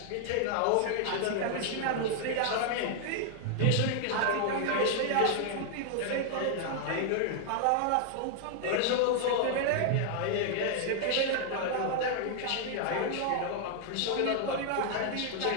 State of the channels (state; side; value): different; both; correlation 0.00